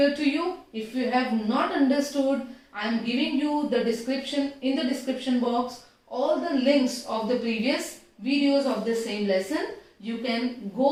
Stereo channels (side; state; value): both; identical; correlation 1.00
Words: to you. If you have not understood, I am giving you the description, in the description box, all the links of the previous videos of the same lesson. You can